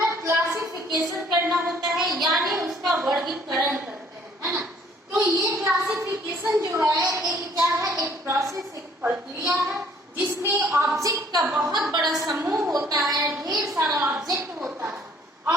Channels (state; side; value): normal; both; correlation 0.59